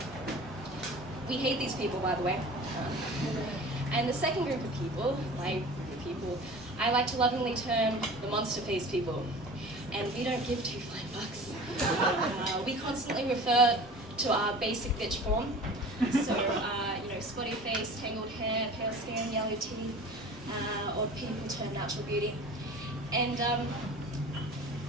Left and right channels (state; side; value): normal; both; correlation 0.40